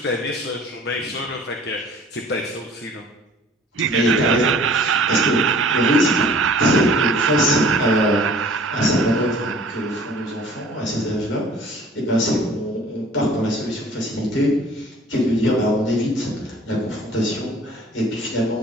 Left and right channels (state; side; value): normal; both; correlation 0.50